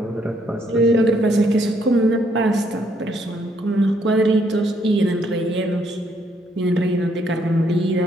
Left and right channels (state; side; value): normal; both; correlation 0.70